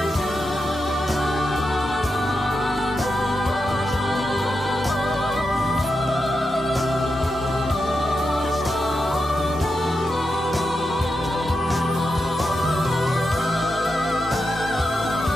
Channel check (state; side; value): normal; both; correlation 0.87